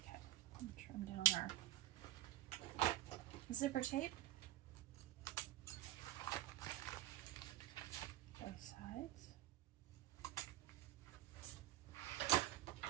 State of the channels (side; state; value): left; quieter; 14.7 dB